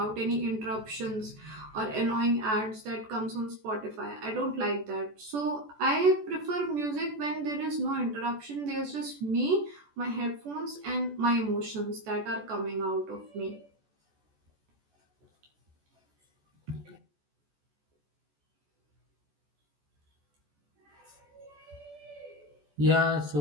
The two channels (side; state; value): left; late; 14 ms